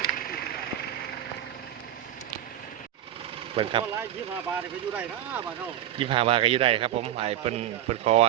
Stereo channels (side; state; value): left; quieter; 12.0 dB